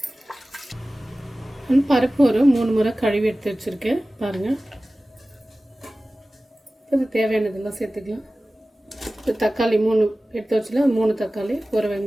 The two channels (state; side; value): normal; both; correlation 0.97